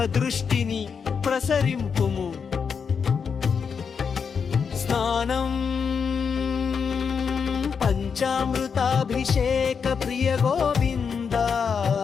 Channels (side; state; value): right; quieter; 6.2 dB